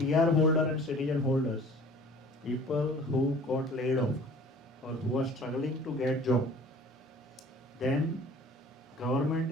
holder and citizen holders, people who got laid off or who are struggling to get job, then government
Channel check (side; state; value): both; normal; correlation 0.48